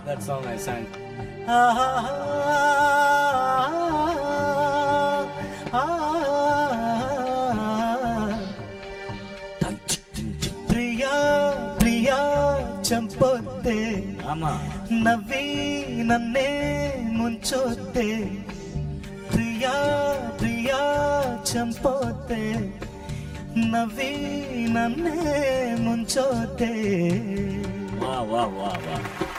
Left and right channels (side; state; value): both; identical; correlation 1.00